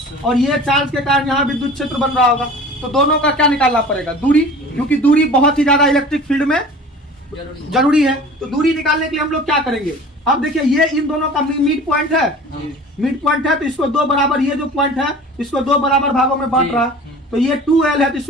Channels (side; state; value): both; normal; correlation 0.42